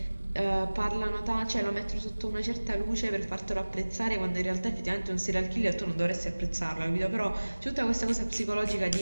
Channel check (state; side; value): inverted; both; correlation -1.00